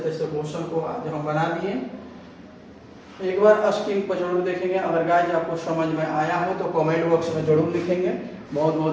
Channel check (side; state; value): both; identical; correlation 1.00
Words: तैसे क्वेश्चन को आज हम बना दिए। एक बार स्क्रीन पर जरूर देखेंगे। अगर गाइस आपको समझ में आया हो तो कमेंट बॉक्स में जरूर लिखेंगे। बहुत